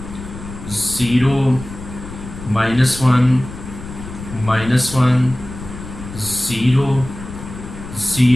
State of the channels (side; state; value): left; noise; rumble, 12 dB below the sound